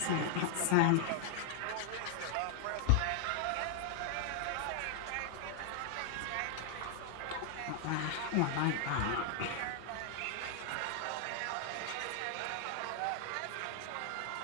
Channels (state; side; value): different; both; correlation 0.00